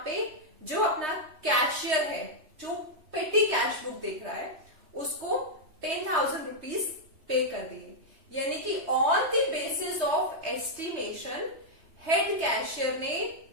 पे जो अपना कैशियर है जो पेटी कैश बुक देख रहा है उसको 10,000 रुपीज पे कर दिए। यानी कि on the basis of estimation head cashier ने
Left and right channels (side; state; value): left; late; 3.2 ms